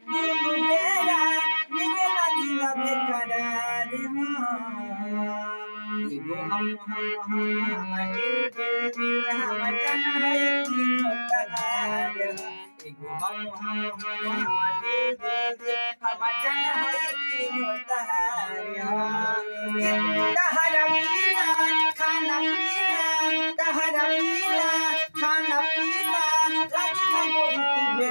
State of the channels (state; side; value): inverted; both; correlation -1.00